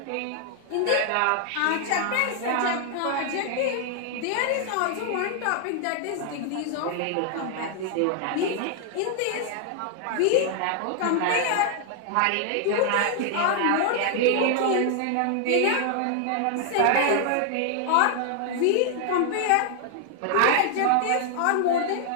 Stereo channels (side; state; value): both; different; correlation 0.00